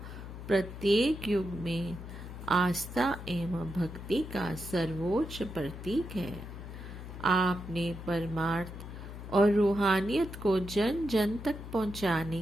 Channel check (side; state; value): left; noise; hum, 11 dB below the sound